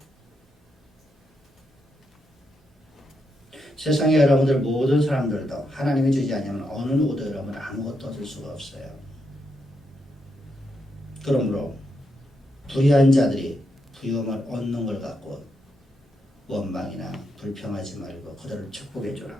세상에 여러분들 모든 사람들도 하나님이 주지 않으면 어느 누구도 여러분 아무것도 얻을 수가 없어요. 그러므로 불의한 자들이 부유함을 얻는 걸 갖고 원망이나 불평하지 말고 그들을 축복해 주라.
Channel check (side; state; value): both; normal; correlation 0.82